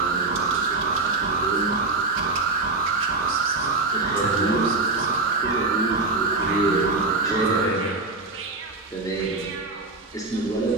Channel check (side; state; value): left; quieter; 3.5 dB